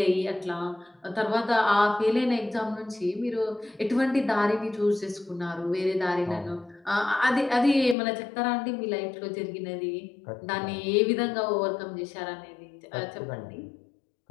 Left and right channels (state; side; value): drops out; right; at 8.0 s